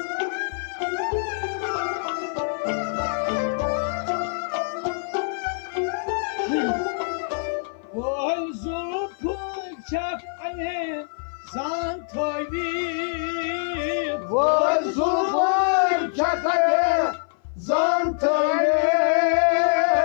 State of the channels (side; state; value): right; silent; 56 dB below the other